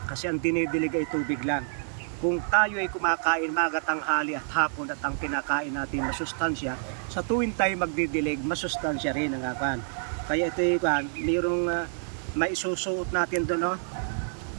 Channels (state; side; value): silent; left; digital silence